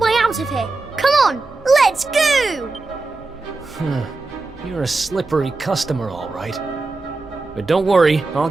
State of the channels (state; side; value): quieter; left; 3.4 dB